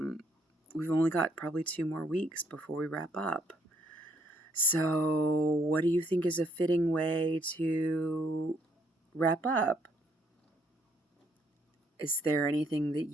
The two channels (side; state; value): both; normal; correlation 0.69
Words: we've only got probably 2 more weeks before we wrap up. So what do you think is a fitting way to wrap up? Is there anything that